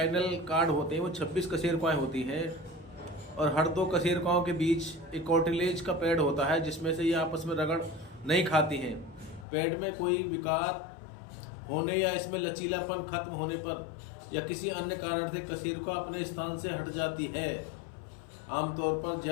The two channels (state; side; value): drops out; right; at 9.5 s